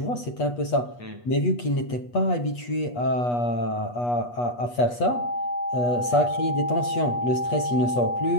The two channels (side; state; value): right; late; 8.3 ms